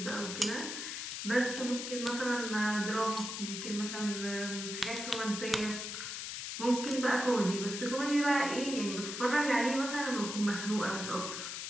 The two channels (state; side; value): noise; left; hiss, 5 dB below the sound